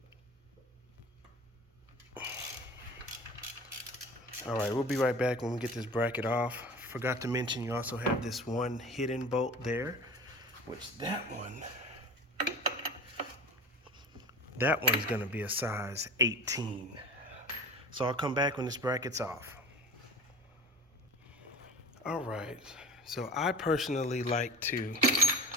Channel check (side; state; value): both; normal; correlation 0.39